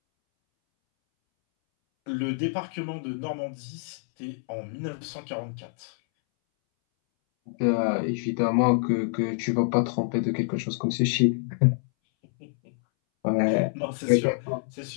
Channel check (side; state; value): right; silent; 60 dB below the other